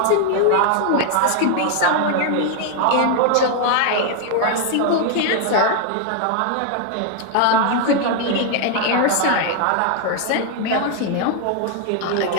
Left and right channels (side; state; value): both; different; correlation 0.00